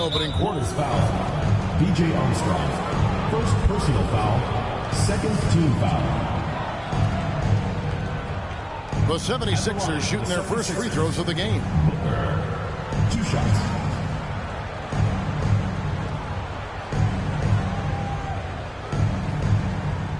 quarter. Foul. B.J. Armstrong. First personal foul. Second team foul. The 76ers shooting their first free throws of the game. 2 shots.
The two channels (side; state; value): both; identical; correlation 1.00